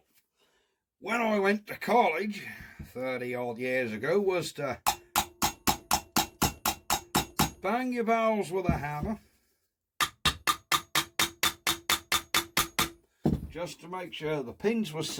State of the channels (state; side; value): identical; both; correlation 1.00